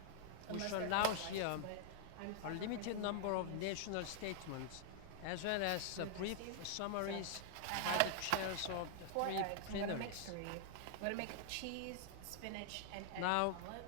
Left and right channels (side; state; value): both; different; correlation -0.01